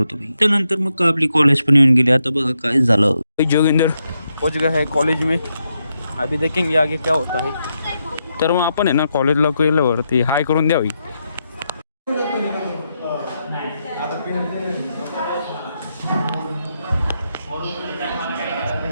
त्यानंतर मग आपली कॉलेज पण येऊन गेली. आता बघा काय झालं. जोगिंदर पहुंच गया है कॉलेज में, अभी देखेंगे आगे क्या होता है. तर मग आपण आहे ना कॉलेजला गेल्यावरती हाय करून द्यावी.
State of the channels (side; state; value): both; inverted; correlation -0.83